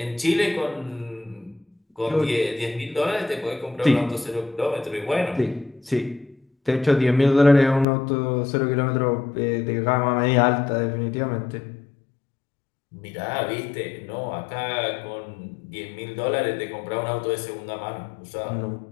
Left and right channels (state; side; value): drops out; right; at 7.9 s